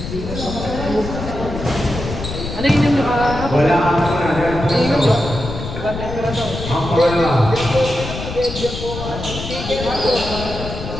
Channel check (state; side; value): noise; left; rumble, 8 dB below the sound